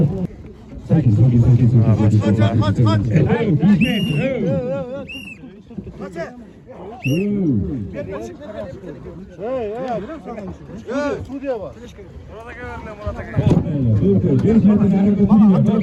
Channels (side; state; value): both; identical; correlation 1.00